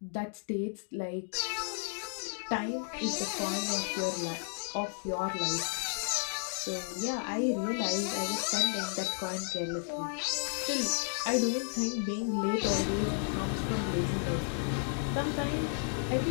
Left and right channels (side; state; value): right; silent; 56 dB below the other